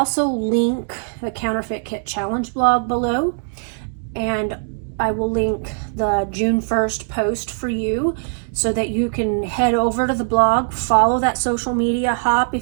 link the Counterfeit Kit Challenge blog below, and I will link the June 1st post for you so that you can head over to the blog, follow that social media hop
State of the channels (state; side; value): silent; left; digital silence